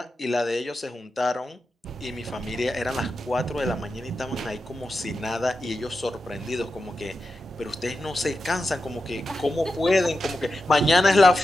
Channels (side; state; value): both; normal; correlation 0.90